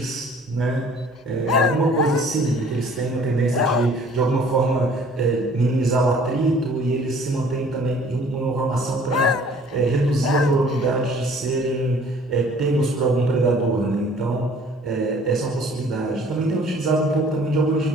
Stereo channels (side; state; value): both; normal; correlation 0.54